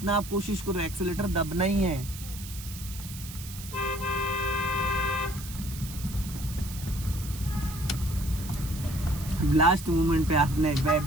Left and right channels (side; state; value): right; noise; hiss, 13 dB below the sound